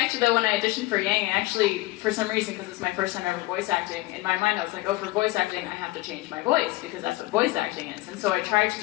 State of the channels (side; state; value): right; quieter; 19.8 dB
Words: though, when I auditioned for Yang, for some reason, because it's my first time ever voice acting, in my mind I was like, oh, for voice acting, I have to change my voice, because that's what voice acting is. And so I tried to